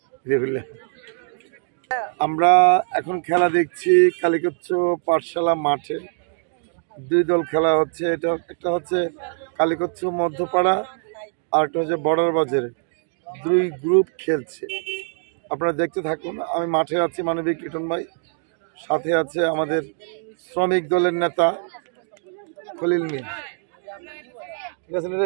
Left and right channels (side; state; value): left; silent; digital silence